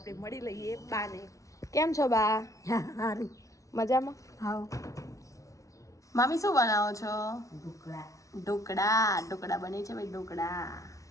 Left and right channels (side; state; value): right; late; 0.16 ms